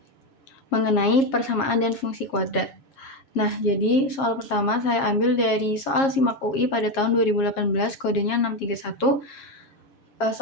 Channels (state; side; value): late; right; 7.4 ms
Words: mengenai persamaan dan fungsi kuadrat. Nah, jadi soal pertama saya ambil dari soal SIMAK UI pada tahun 2018, kodenya 631.